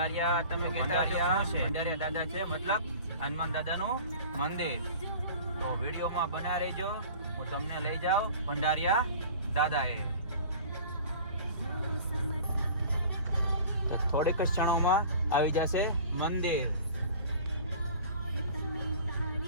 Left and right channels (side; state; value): both; inverted; correlation -0.42